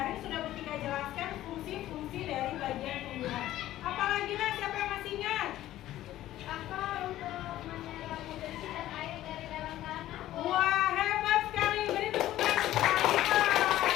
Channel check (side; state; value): right; quieter; 14.1 dB